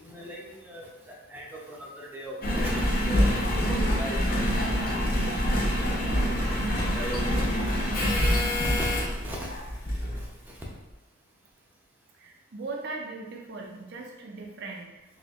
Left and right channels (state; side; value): normal; both; correlation 0.73